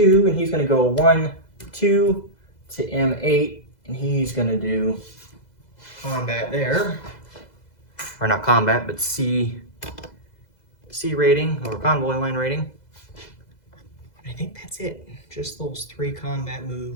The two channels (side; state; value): right; late; 2.0 ms